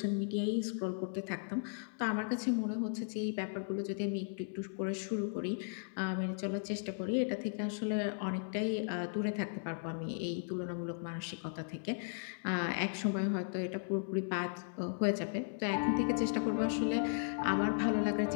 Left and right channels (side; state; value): right; silent; digital silence